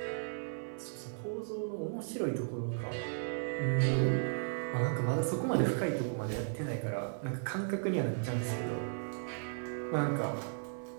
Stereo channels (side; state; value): left; silent; 54 dB below the other